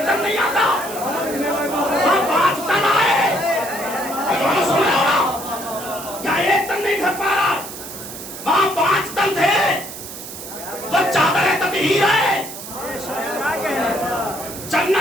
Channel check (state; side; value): noise; right; hiss, 11 dB below the sound